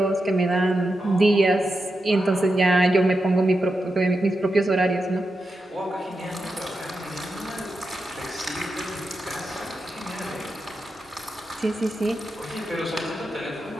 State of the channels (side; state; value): both; normal; correlation 0.88